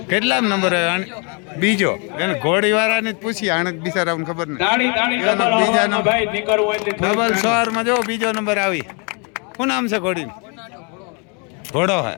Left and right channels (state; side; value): quieter; right; 34.7 dB